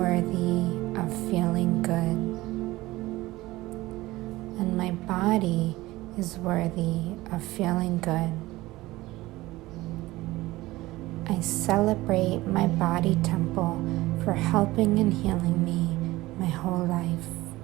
of feeling good, and my body is worthy of feeling good. I celebrate my body temple for helping and healing me my whole life.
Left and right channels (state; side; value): quieter; left; 18.6 dB